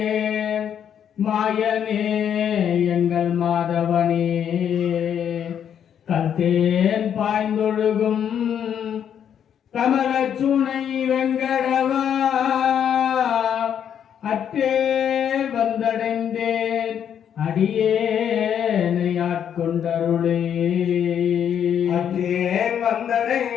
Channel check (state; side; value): quieter; right; 8.8 dB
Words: மாயனே எங்கள் மாதவனே. கல்தேன் பாய்ந்தொழுகும் கமலச்சுனை வெங்கடவா, அற்றேல் வந்தடைந்தேன் அடியேனை ஆட்கொண்டருளே. அற்றேன்